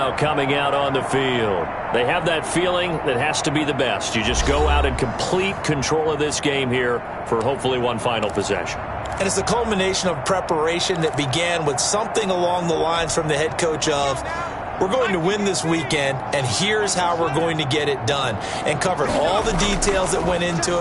coming out on the field. They have that feeling that has to be the best. You just go out and complete control of this game here for hopefully one final possession. And it's a culmination of preparation that began with something along the lines from the head coach of, we're going to win this weekend, and here's how we're going to get it done. And covered all the details that went into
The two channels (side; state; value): both; identical; correlation 1.00